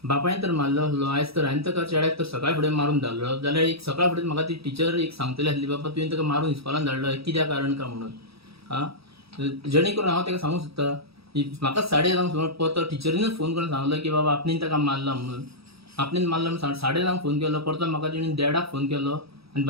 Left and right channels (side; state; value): left; late; 0.77 ms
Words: बापायन तर मारलो आसलो, आयज तर हांवें ताका चेड्याक तर सकाळ फुडें मारून धाडलो, जाल्यार एक सकाळ फुडें म्हाका ती टीचर एक सांगतली आसली बाबा तुवें ताका मारून इस्कॉलान धाडलो कित्या कारण काय म्हणून. जेणे करून हांव ताका सांगूंक सोदता म्हाका 11:30 सुमार परतो टिचरीनच फोन करून सांगलो की बाबा आपणेन ताका मारला म्हणून. आपणेन मारला म्हणून 11:30 फोन केलो, परतो म्हाका तेणी 1:30 फोन केलो आनी